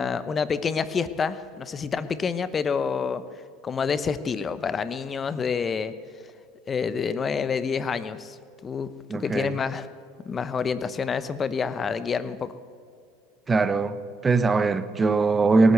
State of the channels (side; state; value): both; normal; correlation 0.80